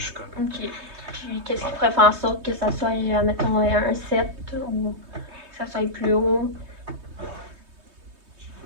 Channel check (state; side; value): late; left; 3.2 ms